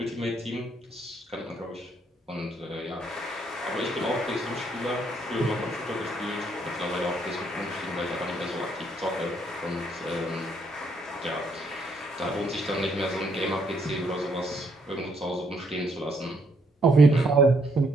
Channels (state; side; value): normal; both; correlation 0.71